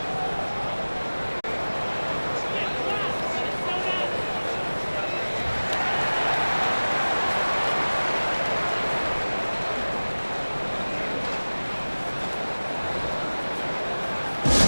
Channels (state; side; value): inverted; both; correlation -1.00